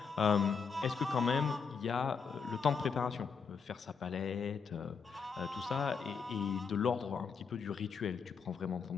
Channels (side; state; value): right; quieter; 5.8 dB